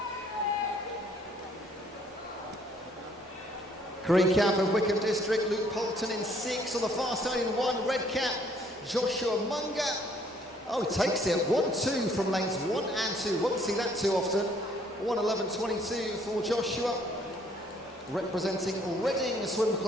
Green cap of Wickham District, Luke Poulton in 6 on the far side in 1, red cap, Joshua Munger. Oh, he takes it, 1-2 from lanes 1 and 2, won't see that too often. 1:11.22 for Joshua, representing Reading Swim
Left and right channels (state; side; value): normal; both; correlation 0.63